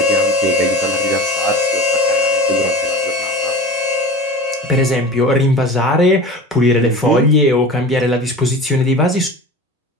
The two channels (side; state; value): both; normal; correlation 0.34